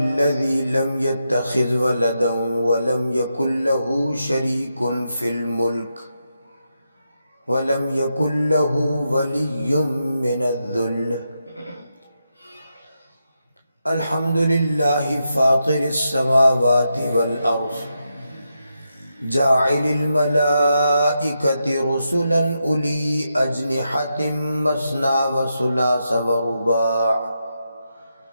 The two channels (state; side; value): inverted; both; correlation -0.85